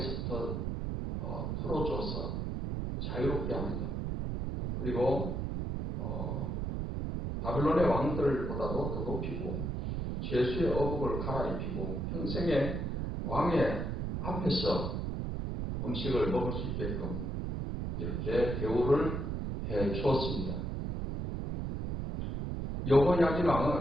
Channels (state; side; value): noise; right; rumble, 2 dB below the sound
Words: 풀어줘서 자유롭게 합니다. 그리고 바벨론의 왕들보다도 더 높이고 죄수의 어복을 갈아입히고 평생의 왕의 앞에서 음식을 먹을 수 있게끔 이렇게 대우를 해 주었습니다. 여호야긴